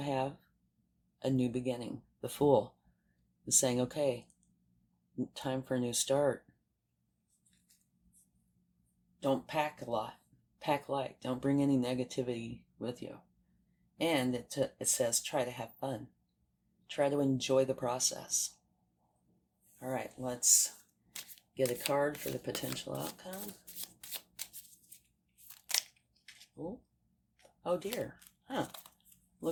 a new beginning. The Fool is saying, okay, time for a new start. Don't pack a lot. Pack light. Don't bring any negativity with you. And it says try to have fun. Try to enjoy the process. All right, let's get a card for the potential outcome. Oh dear.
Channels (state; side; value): identical; both; correlation 1.00